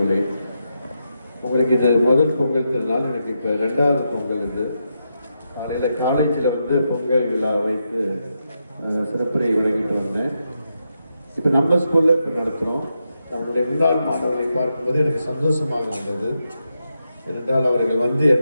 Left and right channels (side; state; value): both; inverted; correlation -0.84